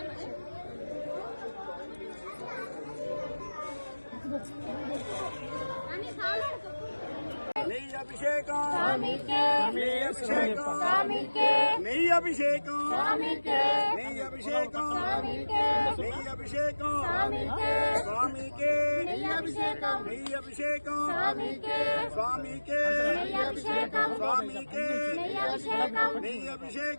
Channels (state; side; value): inverted; both; correlation -1.00